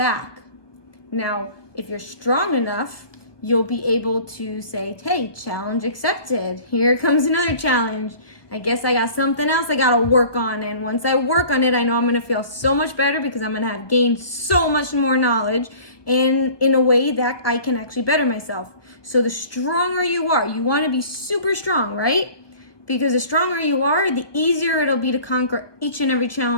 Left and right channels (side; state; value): right; late; 1.2 ms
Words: Now, if you're strong enough, you'll be able to say, hey, challenge accepted. Here comes another challenge. I guess I got something else I got to work on. And once I work on it, I know I'm going to feel so much better, because I'm going to have gained so much more knowledge and in a way that I can actually better myself. So the stronger you are, you want to be super strong, right? Because the stronger you are, the easier it'll be to conquer each and every